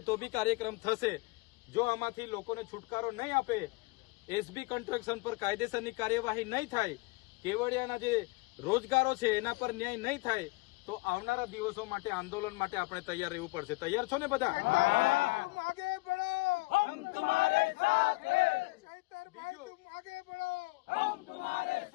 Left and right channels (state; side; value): quieter; right; 24.3 dB